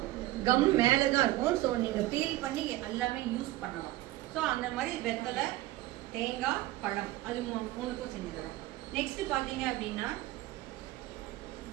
கம் மேலே தான் இருக்கும். ஸோ நீங்கள் பீல் பண்ணி எல்லாமே யூஸ் பண்ணலாம். ஸோ அந்த மாதிரி வெத்தலை தேங்காய் பழம் அது 3க்கும் செஞ்சு தரோம். நெக்ஸ்ட் பார்த்தீங்க அப்படின்னா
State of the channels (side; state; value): left; quieter; 16.9 dB